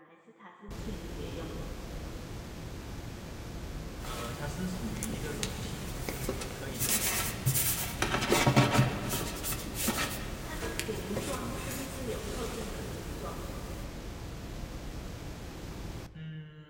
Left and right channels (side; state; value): both; identical; correlation 1.00